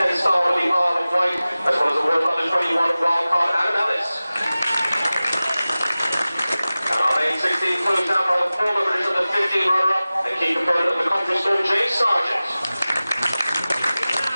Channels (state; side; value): inverted; both; correlation -0.97